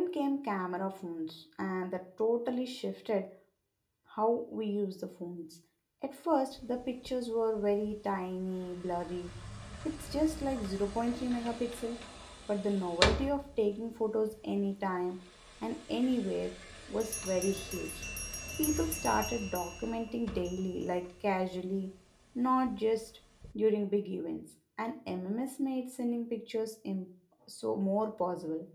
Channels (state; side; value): identical; both; correlation 1.00